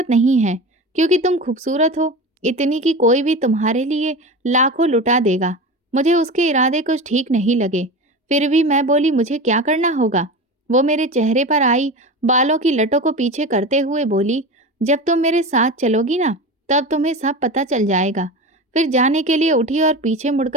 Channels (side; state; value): both; normal; correlation 0.28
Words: नहीं है, क्योंकि तुम खूबसूरत हो, इतनी कि कोई भी तुम्हारे लिए लाखों लुटा देगा।" मुझे उसके इरादे कुछ ठीक नहीं लगे। फिर भी मैं बोली, "मुझे क्या करना होगा?" वो मेरे चेहरे पर आई बालों की लटों को पीछे करते हुए बोली, "जब तुम मेरे साथ चलोगी ना, तब तुम्हें सब पता चल जाएगा।" फिर जाने के लिए उठी और पीछे